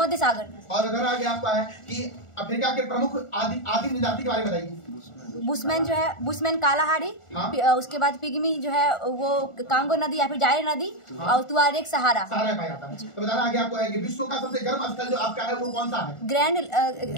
सागर। और अगर आगे आपका है कि अफ्रीका के प्रमुख आदिम जाति के बारे में बताइए। बुशमैन जो है, बुशमैन कालाहारी। हाँ? उसके बाद पिग्मी जो है वो कांगो नदी या फिर जायर नदी। हाँ? और तुआरेग सहारा पाया जाता है। तो बताना आगे आपको है कि विश्व का सबसे गर्म स्थल जो आपका है वो कौन सा है?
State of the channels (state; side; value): late; right; 1.4 ms